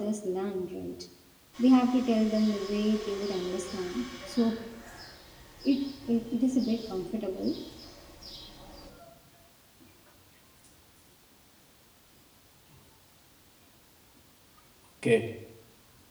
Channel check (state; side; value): identical; both; correlation 1.00